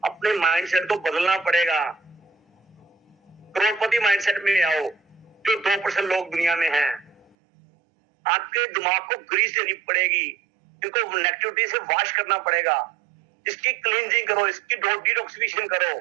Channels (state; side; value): drops out; left; at 7.4 s